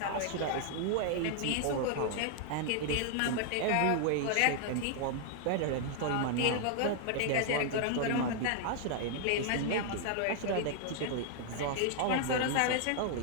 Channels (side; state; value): both; different; correlation 0.00